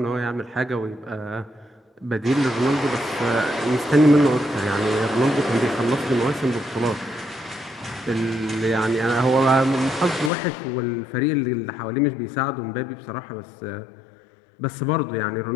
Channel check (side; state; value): right; drops out; at 10.3 s